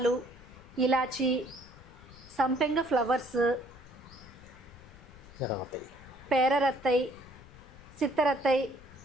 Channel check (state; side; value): noise; left; rumble, 20 dB below the sound